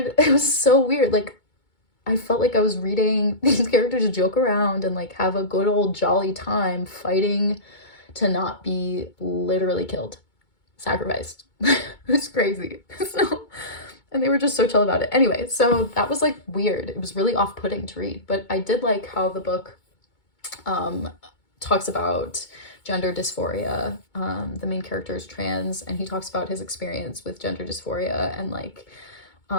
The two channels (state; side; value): late; right; 2.2 ms